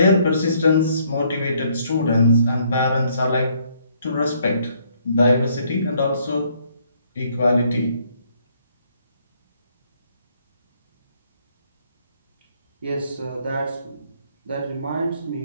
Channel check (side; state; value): both; inverted; correlation -0.67